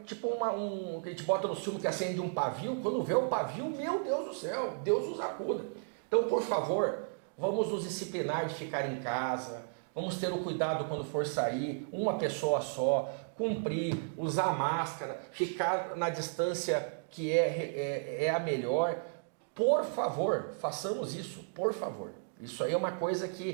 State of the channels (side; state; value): left; silent; digital silence